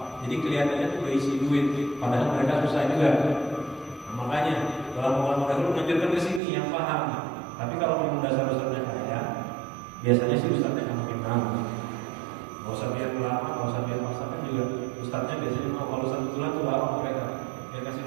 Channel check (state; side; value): drops out; left; at 6.4 s